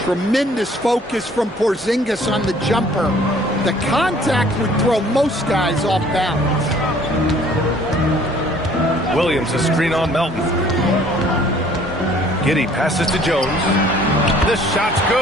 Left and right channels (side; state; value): both; normal; correlation 0.56